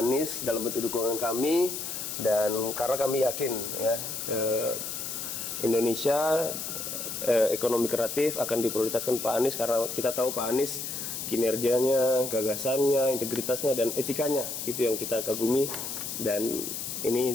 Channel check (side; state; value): left; noise; hiss, 5 dB below the sound